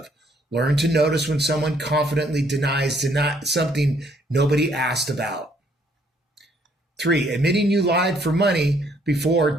Learn to notice when someone confidently denies something nobody asked about. 3, admitting you lied for money before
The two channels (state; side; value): normal; both; correlation 0.66